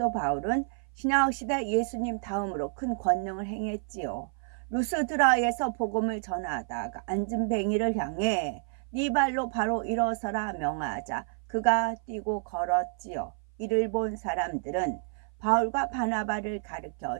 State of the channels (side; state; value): left; silent; 55 dB below the other